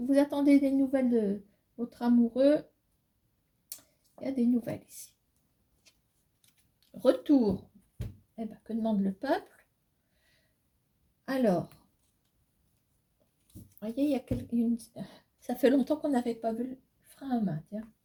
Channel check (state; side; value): identical; both; correlation 1.00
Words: vous attendez des nouvelles de votre amoureux, il y a des nouvelles ici. Retour. Eh ben, que demande le peuple? Alors, voyez, il y a une... Ça fait longtemps qu'on n'avait pas vu le frein à main, tiens.